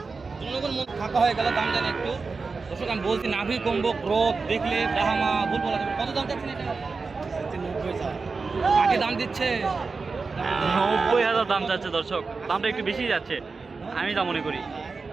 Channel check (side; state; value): left; quieter; 4.4 dB